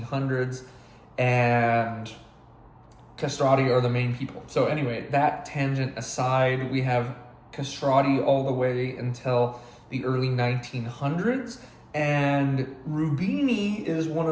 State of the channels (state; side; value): identical; both; correlation 1.00